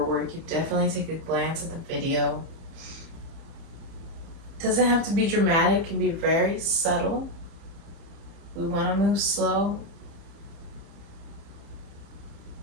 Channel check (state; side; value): late; left; 30 ms